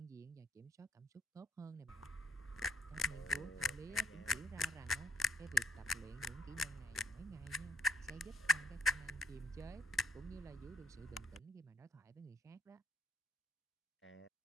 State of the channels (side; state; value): both; normal; correlation 0.69